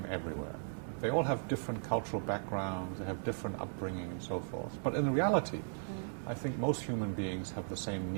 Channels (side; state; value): left; silent; digital silence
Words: everywhere. They all have different cultural backgrounds, they have different upbringing and so forth. But in reality, I think most human beings have the same